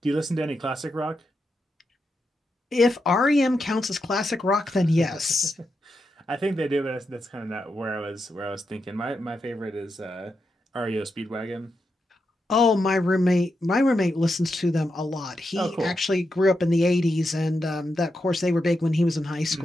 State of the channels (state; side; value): normal; both; correlation 0.86